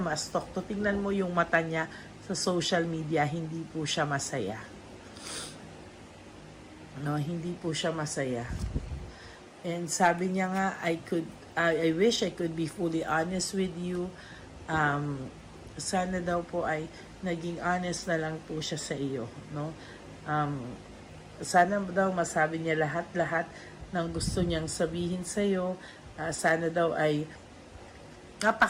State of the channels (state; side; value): identical; both; correlation 1.00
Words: ma-stalk to, tingnan mo yung mata niya sa social media, hindi po siya masaya. No, hindi po siya masaya. And sabi niya nga, I wish I could be fully honest with you. Sana daw po ay naging honest na lang po siya sa iyo, no? Sana daw masabi niya lahat-lahat ng gusto niyang sabihin sa iyo. Sana daw ay